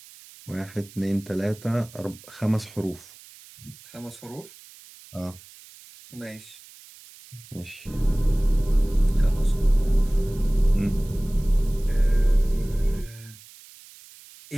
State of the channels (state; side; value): noise; right; hiss, 21 dB below the sound